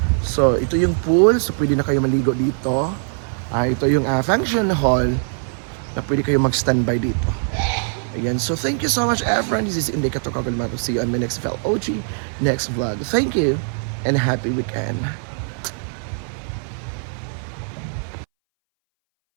So ito yung pool. So pwede na kayo maligo dito. Ito yung function hall na pwede kayo mag-standby dito. Ayan. So thank you so much everyone. This is Inday Katokagal Mato. See you on my next vlog. Next vlog. Thank you and happy weekend.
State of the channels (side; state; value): left; silent; 62 dB below the other